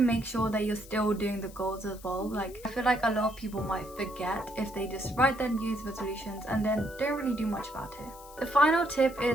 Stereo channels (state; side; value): noise; left; hiss, 20 dB below the sound